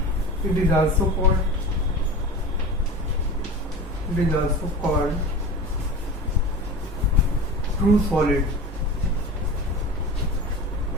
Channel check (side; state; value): both; normal; correlation 0.32